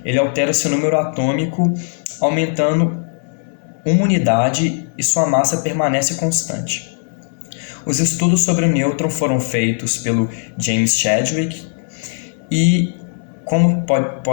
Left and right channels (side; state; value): right; silent; 59 dB below the other